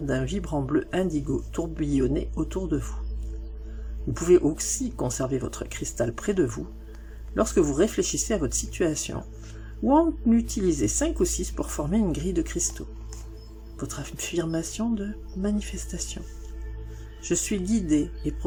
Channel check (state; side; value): identical; both; correlation 1.00